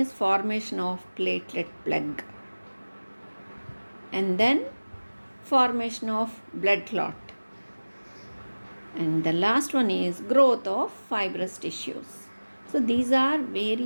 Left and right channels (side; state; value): both; inverted; correlation -1.00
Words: formation of platelet plug, and then formation of blood clot, and the last one is growth of fibrous tissues. So these are